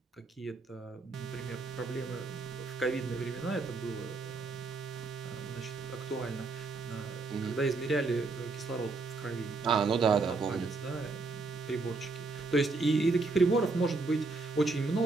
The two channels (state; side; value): quieter; left; 3.7 dB